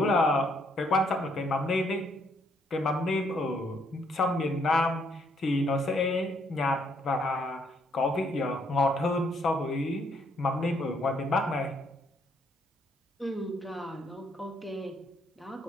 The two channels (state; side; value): normal; both; correlation 0.70